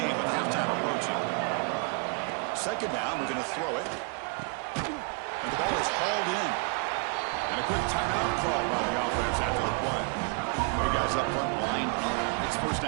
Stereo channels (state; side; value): quieter; left; 37.1 dB